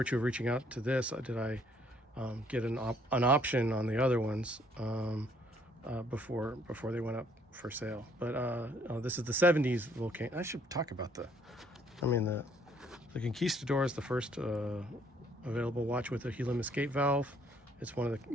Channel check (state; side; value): normal; both; correlation 0.64